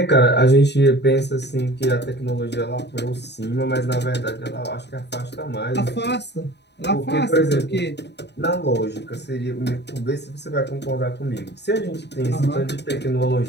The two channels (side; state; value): right; late; 0.50 ms